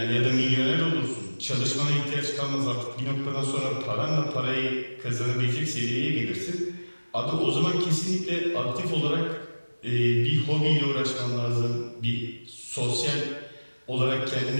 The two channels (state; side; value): inverted; both; correlation -1.00